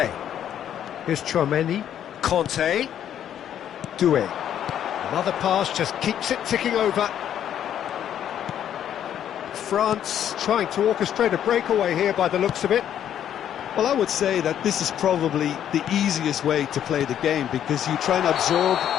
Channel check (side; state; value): right; quieter; 10.1 dB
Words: Here's Chouameni. Conte. Doué. Another pass just keeps it ticking over. France trying to orchestrate a breakaway here by the looks of it. Well, I would say that this is probably the easiest way to play the game, because you try and absorb